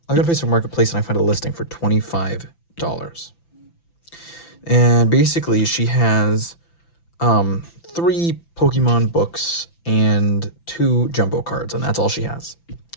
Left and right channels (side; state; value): right; late; 5.9 ms